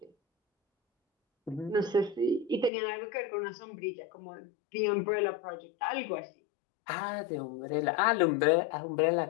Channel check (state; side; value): drops out; right; at 2.7 s